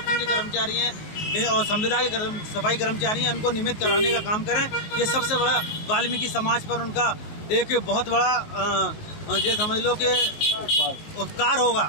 के कर्मचारी हैं और संविदा के सफाई कर्मचारी हैं, उनको नियमित कराने का काम करें। ये सबसे बड़ा वाल्मीकि समाज पर उनका एक बहुत बड़ा ये समझ लो कि उपकार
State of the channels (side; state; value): right; late; 19 ms